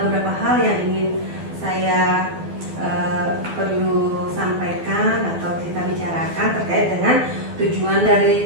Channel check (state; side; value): late; left; 12 ms